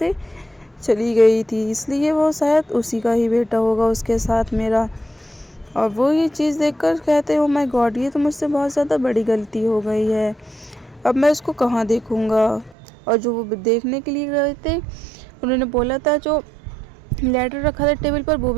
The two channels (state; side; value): drops out; left; at 12.8 s